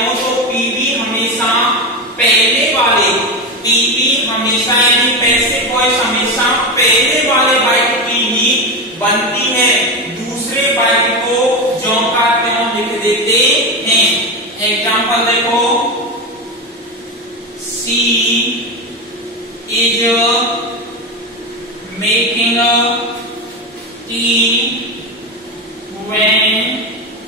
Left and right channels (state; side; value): normal; both; correlation 0.17